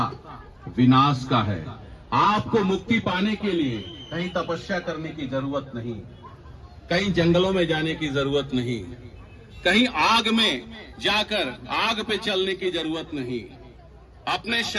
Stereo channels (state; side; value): identical; both; correlation 1.00